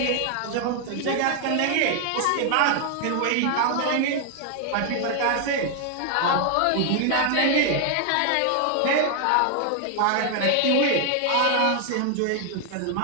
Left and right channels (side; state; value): both; different; correlation 0.00